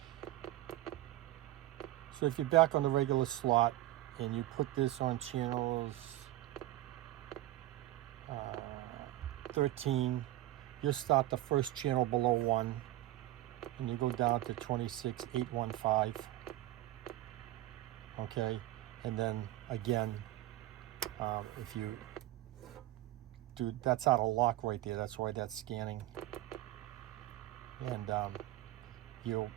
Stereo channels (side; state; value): left; quieter; 15.3 dB